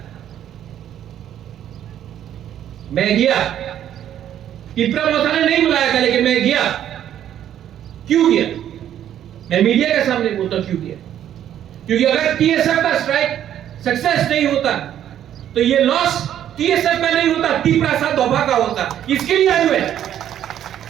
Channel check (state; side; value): quieter; left; 10.7 dB